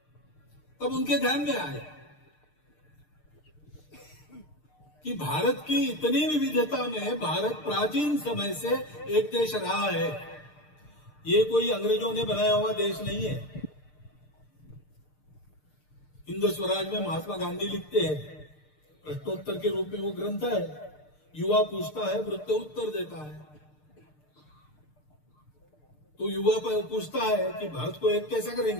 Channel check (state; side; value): late; right; 6.6 ms